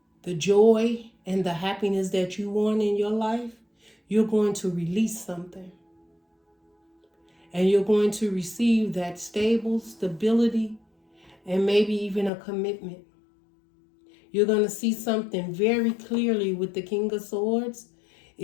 the joy, and the happiness that you want in your life. You're going to release something. And you're going to receive that stable stability and maybe even a commitment. You're going to see something very clearly with the King of Swords.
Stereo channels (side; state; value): right; drops out; at 12.3 s